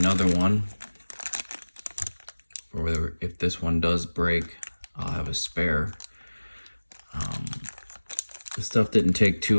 one. Or if this one does break, I'll have a spare. The stuff didn't take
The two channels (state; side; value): inverted; both; correlation -1.00